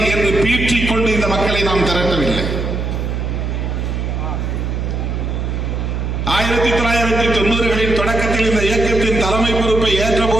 என்று பீற்றிக் கொண்டு இந்த மக்களை நாம் திரட்டவில்லை. 1990களின் தொடக்கத்தில் இந்த இயக்கத்தின் தலைமை பொறுப்பை ஏற்ற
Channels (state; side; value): noise; right; hum, 2 dB below the sound